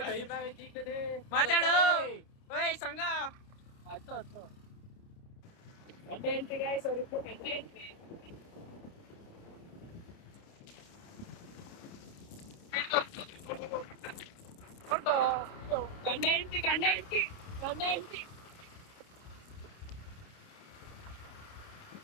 ಮಾತಾಡು. ಓಯ್ ಸಂಘ ಹತ್ತು ಗಂಟೆ ಗಾಯ್ಸ್ ಅವ್ರಿಗೂ ಗಂಟೆ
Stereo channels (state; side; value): late; right; 29 ms